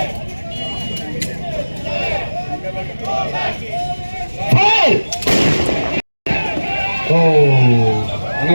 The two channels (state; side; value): inverted; both; correlation -1.00